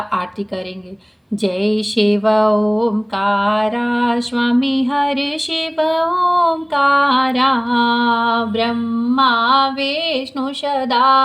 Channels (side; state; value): both; identical; correlation 1.00